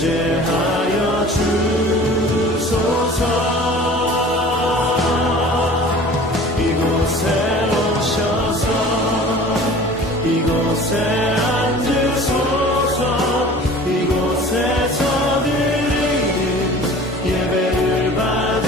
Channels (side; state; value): both; normal; correlation 0.44